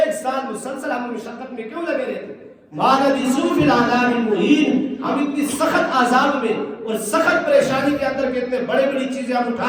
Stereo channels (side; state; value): both; identical; correlation 1.00